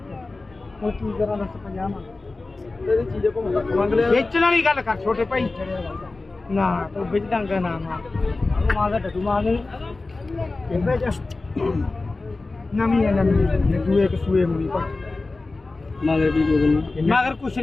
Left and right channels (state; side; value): quieter; right; 3.4 dB